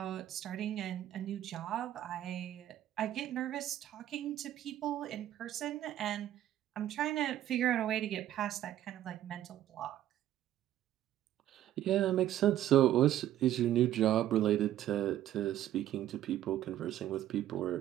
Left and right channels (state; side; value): quieter; left; 12.5 dB